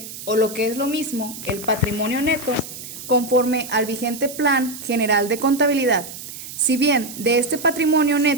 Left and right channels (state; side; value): noise; right; hiss, 12 dB below the sound